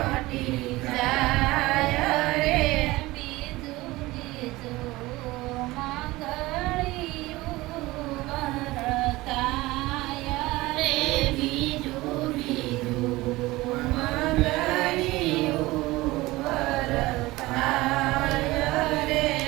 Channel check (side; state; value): left; quieter; 19.7 dB